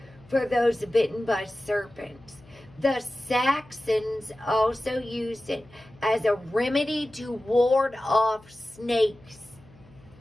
for those bitten by serpents. The Saxons also used it as a remedy to ward off snakes.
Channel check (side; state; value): left; noise; hum, 25 dB below the sound